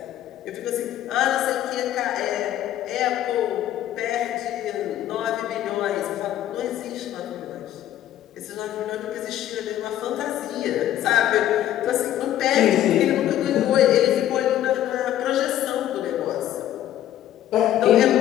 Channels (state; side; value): quieter; right; 12.3 dB